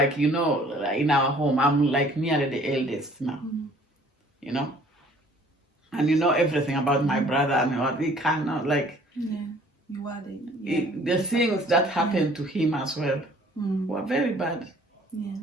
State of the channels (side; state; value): both; normal; correlation 0.55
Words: in our home, I'm like nearly the eldest now, And everything about my brother and what he cannot, like, you are the things that happened to him as well were very bad.